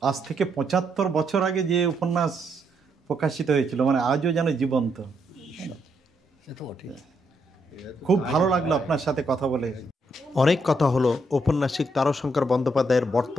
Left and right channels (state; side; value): normal; both; correlation 0.76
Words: আজ থেকে 75 বছর আগে যে উপন্যাস প্রকাশিত হয়েছিল, মানে আজও যেন জীবন্ত। সে তো বটে। খুব ভালো লাগলো আপনার সাথে কথা বলে। অনেক কথা হলো ঔপন্যাসিক তারাশঙ্কর বন্দ্যোপাধ্যায়ের